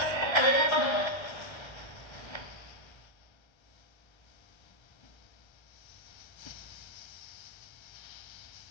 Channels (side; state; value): right; late; 1.3 ms